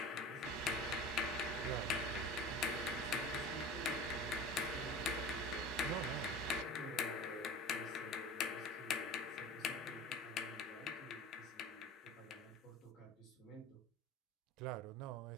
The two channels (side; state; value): both; normal; correlation 0.36